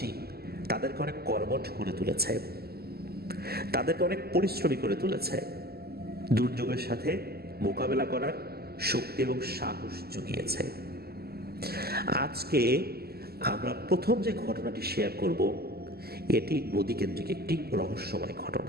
তাদেরকে অনেক কর্মঠ করে তুলেছে, তাদেরকে অনেক পরিশ্রমী করে তুলেছে, দুর্যোগের সাথে মোকাবেলা করার শক্তি এবং সাহস জুগিয়েছে। আজকে আমরা প্রথম যে ঘটনাটি শেয়ার করব, এটি নদীকেন্দ্রিক একটি রহস্যময়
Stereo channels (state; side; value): late; left; 0.46 ms